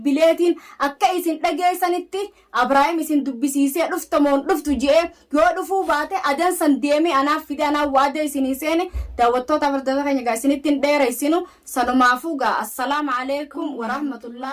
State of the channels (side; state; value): both; identical; correlation 1.00